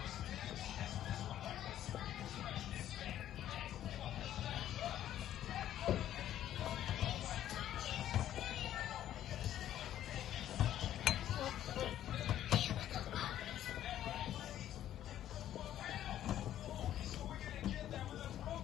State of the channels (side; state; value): right; quieter; 11.8 dB